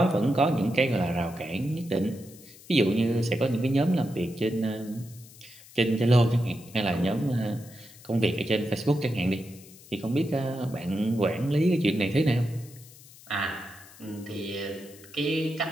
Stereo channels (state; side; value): noise; left; hiss, 21 dB below the sound